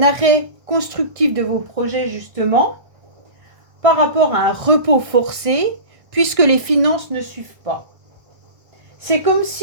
arrêt constructif de vos projets justement par rapport à un repos forcé puisque les finances ne suivent pas. C'est comme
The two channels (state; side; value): late; left; 1.6 ms